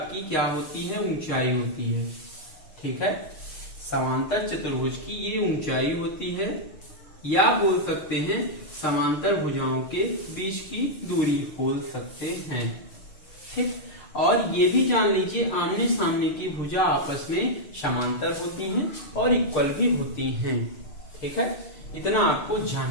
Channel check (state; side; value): late; right; 6.6 ms